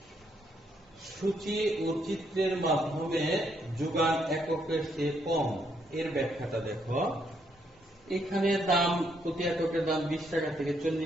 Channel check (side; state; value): both; normal; correlation 0.74